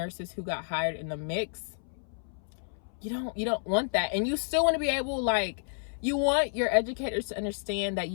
who got hired in the mix. You don't want that. And you still want to be able, like, you want your educators to understand that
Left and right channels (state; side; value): silent; right; 57 dB below the other